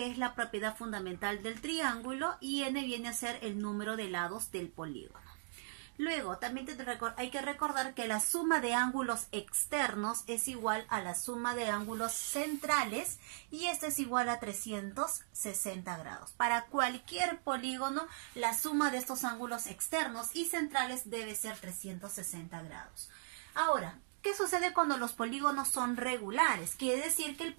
es la propiedad fundamental del triángulo y n viene a ser el número de lados del polígono. Luego, también hay que recordar que la suma de ángulos externos es igual a la suma de ángulos centrales y esta es igual a 360 grados. Para cualquier polígono, la suma de estos ángulos externos y centrales debe ser 360 grados. Ahora, ¿qué sucede cuando los polígonos son regulares? Quiere decir que el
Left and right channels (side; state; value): left; silent; digital silence